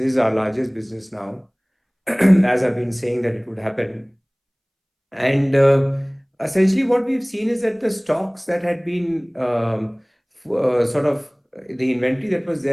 our largest business now, as I've been saying that it would happen. And essentially, what we've seen is that the stocks that had been sort of the inventory that was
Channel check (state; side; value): identical; both; correlation 1.00